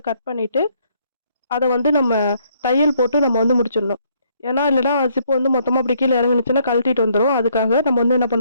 கட் பண்ணிட்டு, அத வந்து நம்ம தையல் போட்டு நம்ம வந்து முடிச்சிடணும். ஏன்னா, இல்லன்னா ஜிப் வந்து மொத்தமா அப்படி கீழ இறங்குனுச்சுன்னா கழட்டிட்டு வந்துரும். அதுக்காக நம்ம வந்து என்ன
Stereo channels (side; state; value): both; inverted; correlation -0.69